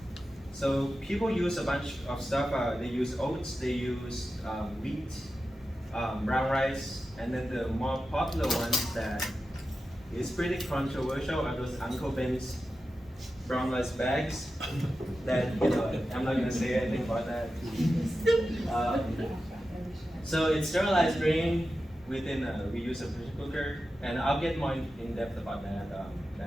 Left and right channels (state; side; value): normal; both; correlation 0.92